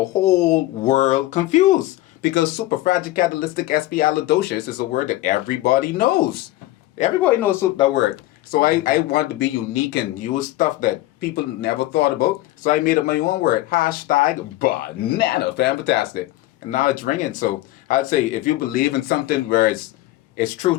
whole world confused, because superfragilocatalytic is a word that everybody knows. Everybody knows that word. So I wanted to be unique and use stuff that people never thought about. So I made up my own word, #banana fantastic. And now it's ringing. So I'd say if you believe in something where it's true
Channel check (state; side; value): quieter; right; 16.9 dB